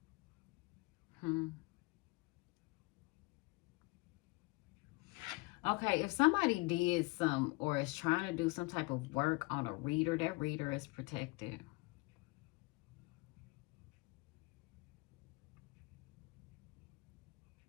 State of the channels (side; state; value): right; quieter; 25.0 dB